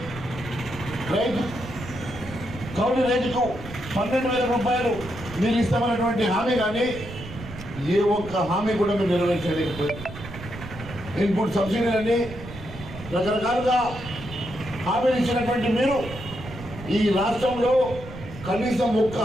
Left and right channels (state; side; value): noise; right; rumble, 13 dB below the sound